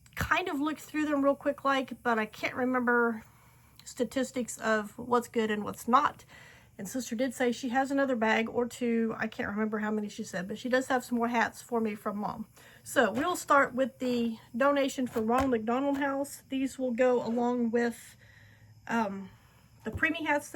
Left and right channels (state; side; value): identical; both; correlation 1.00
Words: kind of looked through them real quick but I can't remember statistics of what's good and what's not. And sister did say she has another bag or two. I can't remember how many she said, but she does have some more hats for me from mom. So we'll start with the donation for Ronald McDonald House. These will go along with the preemie hats